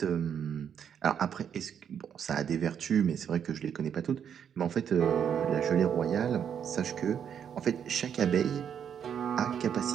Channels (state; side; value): quieter; left; 8.3 dB